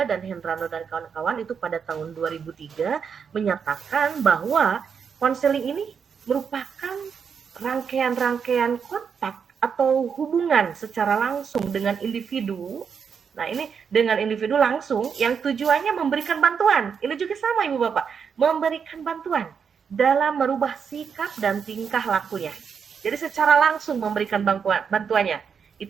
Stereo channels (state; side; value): quieter; left; 6.6 dB